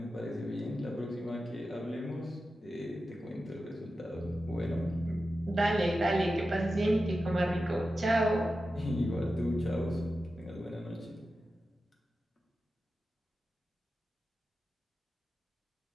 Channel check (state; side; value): normal; both; correlation 0.92